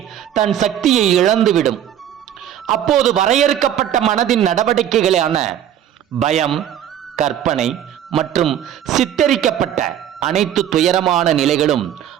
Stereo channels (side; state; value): left; quieter; 10.5 dB